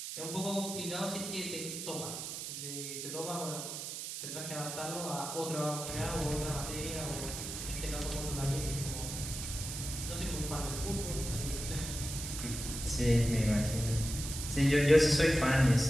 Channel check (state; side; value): noise; right; hiss, 6 dB below the sound